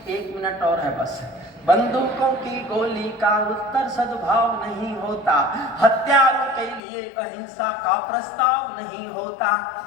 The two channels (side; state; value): right; drops out; at 6.8 s